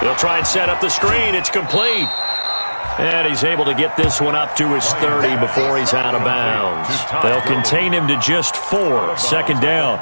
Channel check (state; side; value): inverted; both; correlation -1.00